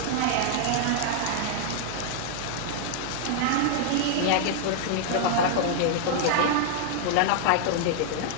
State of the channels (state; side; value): different; both; correlation 0.00